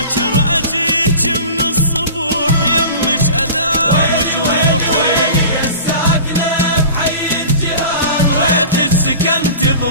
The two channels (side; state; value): both; inverted; correlation -0.38